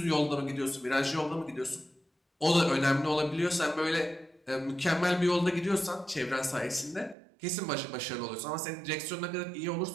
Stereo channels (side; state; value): left; drops out; at 7.2 s